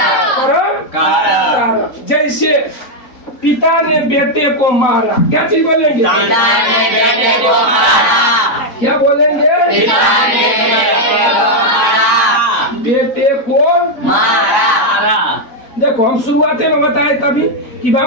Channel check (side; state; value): right; late; 3.9 ms